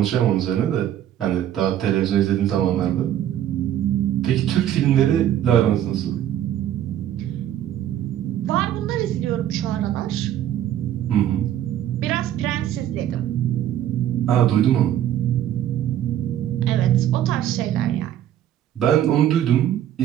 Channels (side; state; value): left; quieter; 11.2 dB